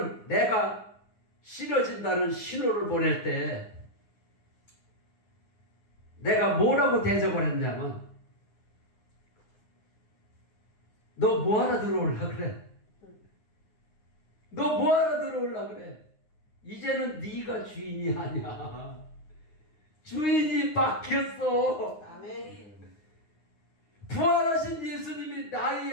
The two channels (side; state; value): right; late; 9.7 ms